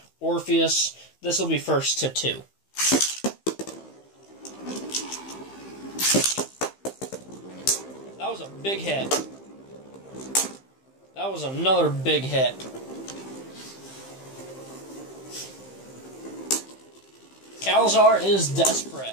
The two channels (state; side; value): late; right; 15 ms